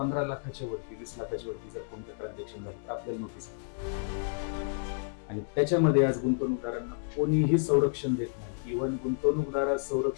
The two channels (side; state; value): right; silent; 57 dB below the other